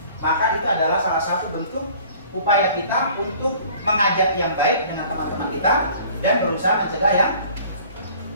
maka itu adalah salah satu bentuk upaya kita untuk mengajak yang baik dengan teman-teman kita dan berusaha mencegah yang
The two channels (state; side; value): inverted; both; correlation -0.51